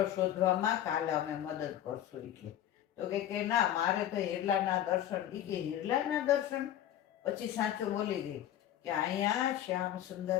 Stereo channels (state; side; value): quieter; right; 11.6 dB